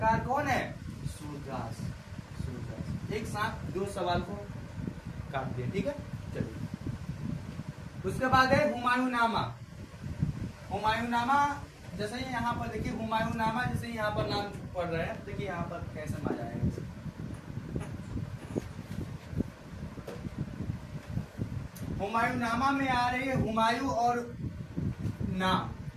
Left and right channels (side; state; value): both; identical; correlation 1.00